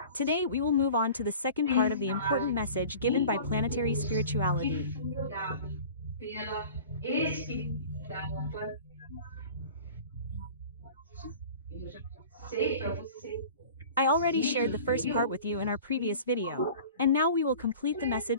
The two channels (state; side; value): inverted; both; correlation -0.42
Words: today we will move on to the second part of the important message given by planetary spirituality. I already shared the first part with you in our previous video, and now we will complete the